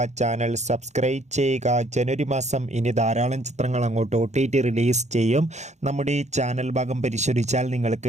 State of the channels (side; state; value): left; late; 0.33 ms